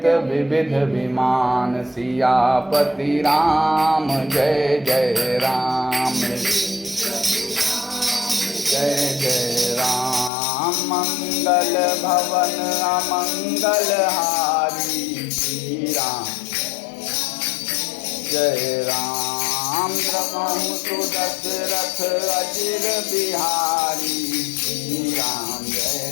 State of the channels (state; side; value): drops out; right; at 10.3 s